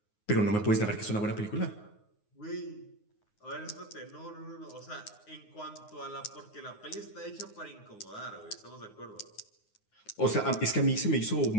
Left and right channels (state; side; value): late; right; 9.5 ms